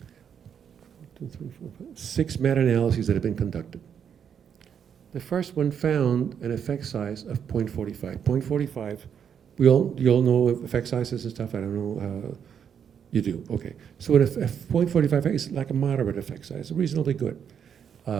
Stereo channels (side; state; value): left; quieter; 7.9 dB